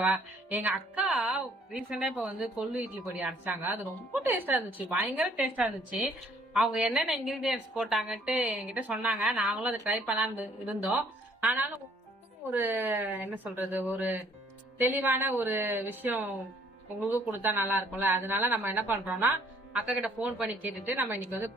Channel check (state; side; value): normal; both; correlation 0.61